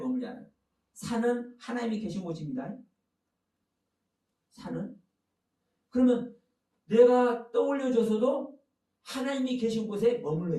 않아요. 산은 하나님이 계신 곳입니다. 산은. 그러면 내가 떠올려져서도 하나님이 계신 곳에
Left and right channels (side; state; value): both; identical; correlation 1.00